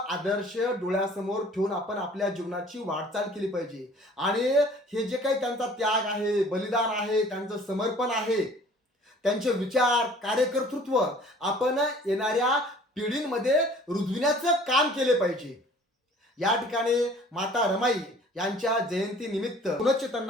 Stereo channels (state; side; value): normal; both; correlation 0.51